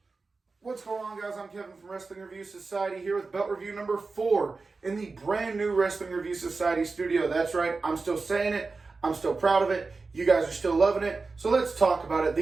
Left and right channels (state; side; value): quieter; left; 4.0 dB